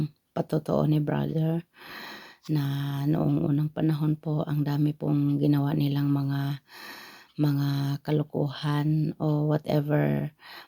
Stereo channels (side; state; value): both; identical; correlation 1.00